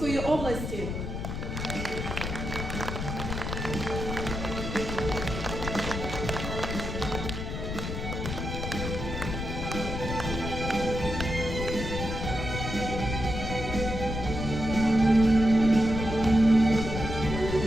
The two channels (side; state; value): left; noise; rumble, 4 dB below the sound